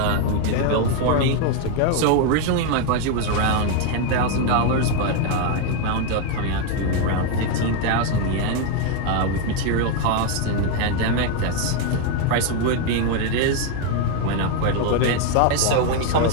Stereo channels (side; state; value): both; different; correlation 0.01